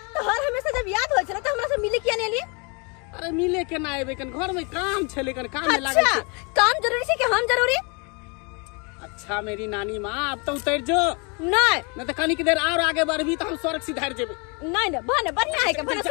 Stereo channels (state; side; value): quieter; right; 32.2 dB